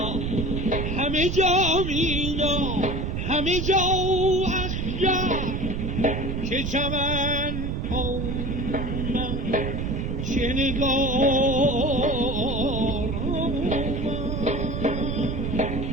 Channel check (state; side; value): noise; right; rumble, 2 dB below the sound